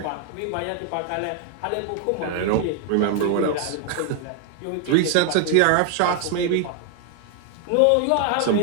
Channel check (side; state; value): both; different; correlation 0.00